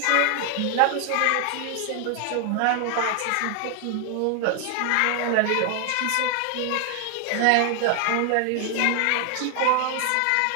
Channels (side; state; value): both; different; correlation 0.00